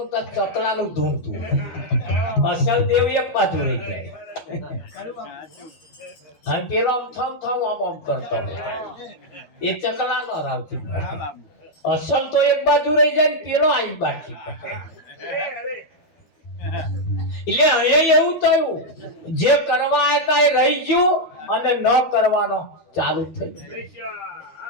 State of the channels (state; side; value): late; right; 12 ms